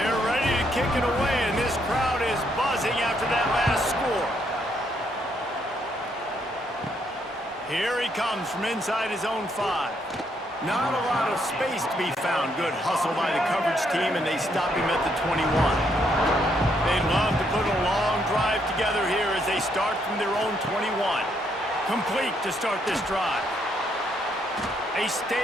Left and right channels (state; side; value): normal; both; correlation 0.73